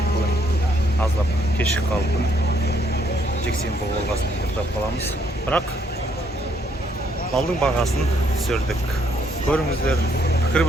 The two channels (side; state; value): both; normal; correlation 0.70